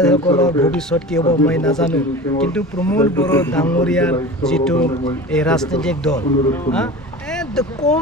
ভৱিষ্যত কি হ'ব মই নাজানো। কিন্তু প্ৰমোদ বড়ো ডাঙৰীয়াৰ যিটো এই ৰাজনৈতিক দল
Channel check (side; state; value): both; normal; correlation 0.34